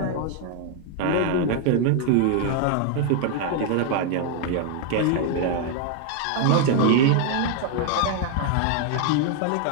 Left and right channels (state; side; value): different; both; correlation 0.00